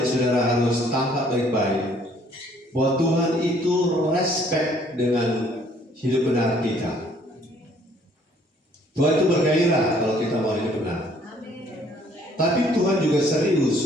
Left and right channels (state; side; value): normal; both; correlation 0.61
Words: saudara harus tangkap baik-baik, bahwa Tuhan itu respect dengan hidup benar kita. Tuhan itu bergairah kalau kita mau hidup benar. Tapi Tuhan juga